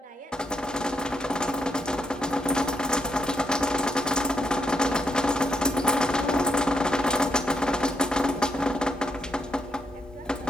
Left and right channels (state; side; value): normal; both; correlation 0.77